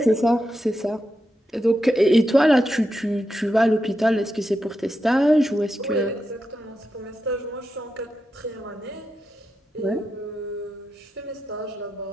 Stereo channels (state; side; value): normal; both; correlation 0.87